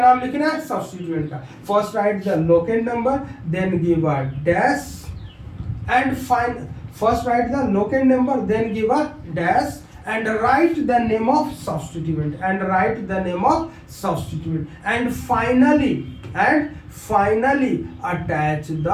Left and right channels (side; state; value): both; identical; correlation 1.00